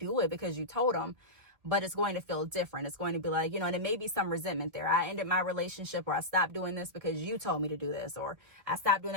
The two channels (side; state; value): left; late; 2.0 ms